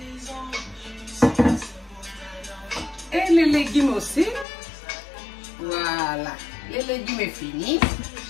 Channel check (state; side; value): drops out; right; at 4.5 s